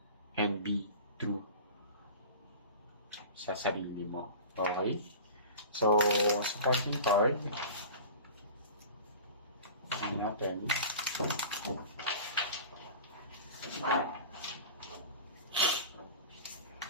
and be true sa sarili mo. Okay? So, supporting card. Tingnan natin.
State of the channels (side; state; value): both; inverted; correlation -0.36